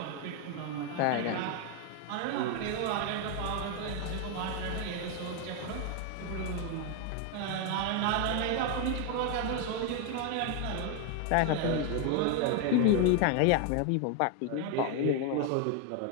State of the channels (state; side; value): different; both; correlation 0.01